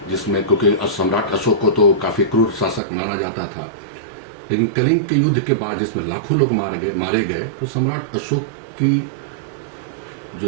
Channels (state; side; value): drops out; left; at 2.8 s